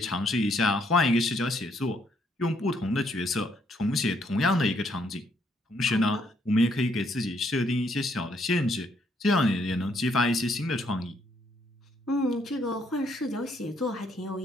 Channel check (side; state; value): both; normal; correlation 0.71